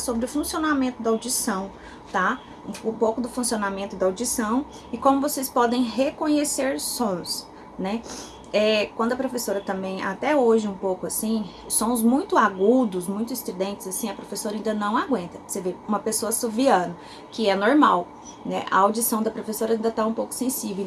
o funcionamento da audição, tá? Um pouco do funcionamento da audição e como vocês podem reconhecer sons, né? Quando a professora também, até hoje um pouco assim, sons muito agudos, muito estridentes, assim, a professora ainda não aguenta. Você vê uma pessoa assoviando, que é normal, né? A audição da professora ainda tá um pouco sensível,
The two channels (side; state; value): both; identical; correlation 1.00